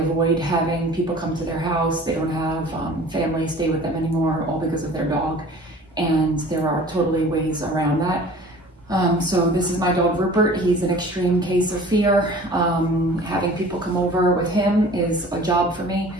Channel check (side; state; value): both; normal; correlation 0.45